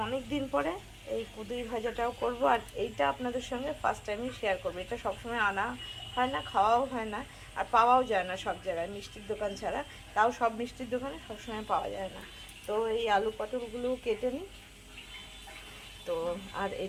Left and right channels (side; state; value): both; identical; correlation 1.00